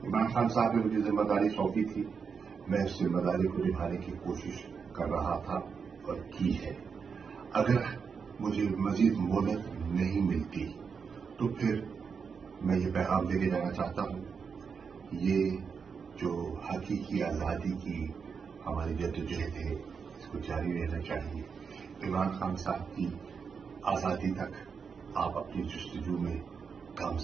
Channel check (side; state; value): left; quieter; 5.9 dB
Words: इमरान खान साहब ने मुझे जिम्मेदारी सौंपी थी, मैं उस जिम्मेदारी को निभाने की कोशिश कर रहा था और की है। अगर मुझे मजीद मोहलत नहीं मिलती तो फिर मैं ये पैगाम देके जाना चाहता हूं, ये जो हकीकी आजादी की हमारी जद्दोजहद है इसको जारी रहना चाहिए। इमरान खान साहब की आजादी तक आप अपनी जस्तजू में